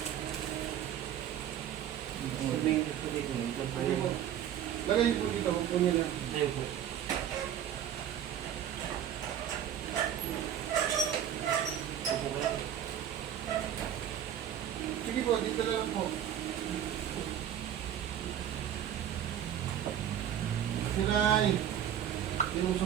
Sabihin ko dito. Ito pa Sige po. Lagay niyo po dito. Huwag po niyo na. Ayun po. Upo kayo. Sige po, dito na lang po. Siray.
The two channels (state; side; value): quieter; left; 10.0 dB